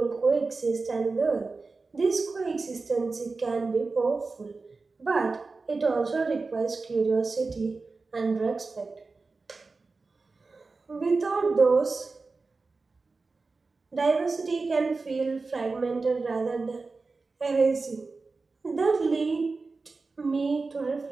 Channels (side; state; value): left; quieter; 4.0 dB